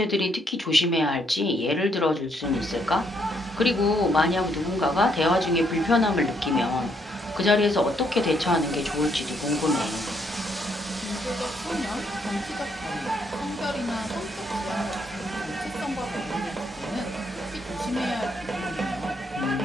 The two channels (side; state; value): both; normal; correlation 0.72